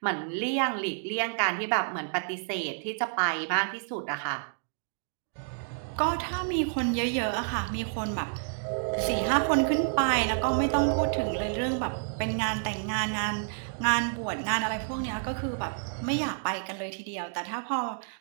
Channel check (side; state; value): left; silent; digital silence